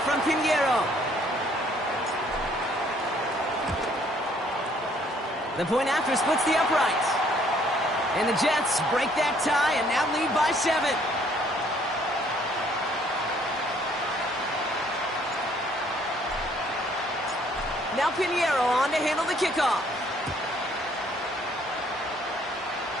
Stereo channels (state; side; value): normal; both; correlation 0.63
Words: from Pinheiro. The point after splits the uprights. And the Jets break that tie and now lead by 7. Now Pinheiro on to handle the kickoff.